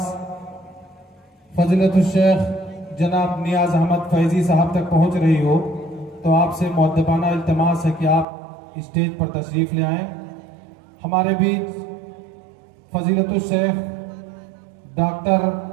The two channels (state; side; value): drops out; left; at 8.2 s